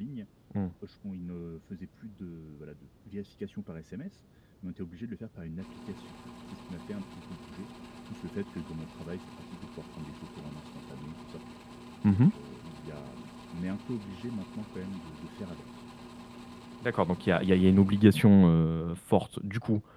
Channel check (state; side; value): identical; both; correlation 1.00